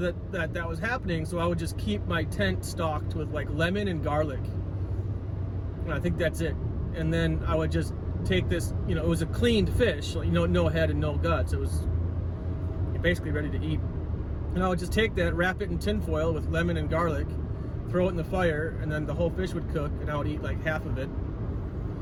was happening, so I would just keep my tent stocked with like lemon and garlic. And I think that's it. And then I would just take this, it was a cleaned fish, no head and no guts. It was basically ready to eat. And I would just take that, wrap it in tin foil with lemon and garlic, throw it in the fire, and then the whole fish would cook, and I would eat like half of it.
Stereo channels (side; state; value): both; identical; correlation 1.00